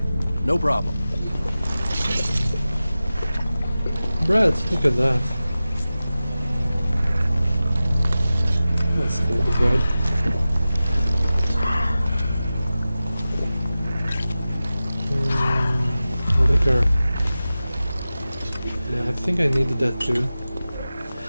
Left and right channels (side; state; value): both; inverted; correlation -0.95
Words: No problem. Bread, look at that. Let's take the bread. Liquor. Yeah, I think I needed that too.